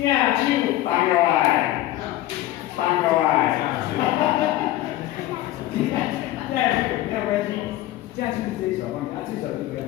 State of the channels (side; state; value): right; quieter; 15.1 dB